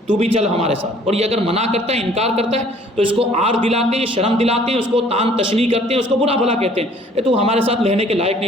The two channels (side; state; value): both; normal; correlation 0.56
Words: تو بھی چل ہمارے ساتھ، اور یہ اگر منع کرتا ہے، انکار کرتا ہے، تو اس کو آر دلاتے ہیں، شرم دلاتے ہیں، اس کو تان تشنیع کرتے ہیں، اس کو برا بھلا کہتے ہیں، تو ہمارے ساتھ رہنے کے لائق